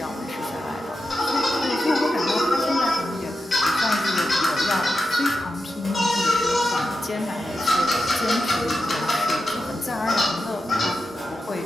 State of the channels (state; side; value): normal; both; correlation 0.89